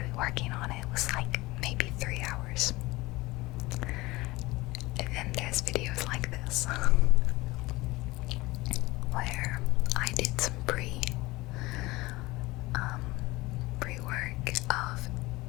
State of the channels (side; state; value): right; quieter; 20.8 dB